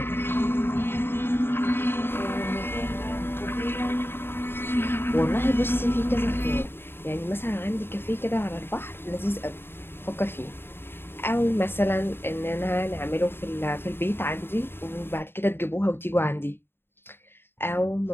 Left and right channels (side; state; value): right; late; 0.11 ms